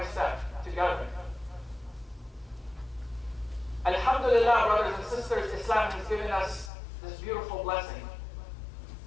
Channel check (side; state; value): right; drops out; at 6.7 s